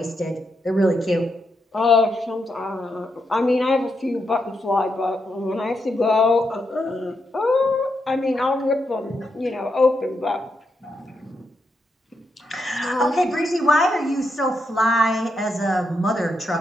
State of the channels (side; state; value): both; normal; correlation 0.82